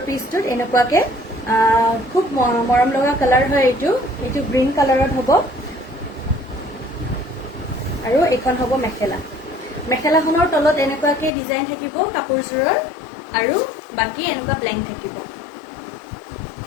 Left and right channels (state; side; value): drops out; right; at 11.3 s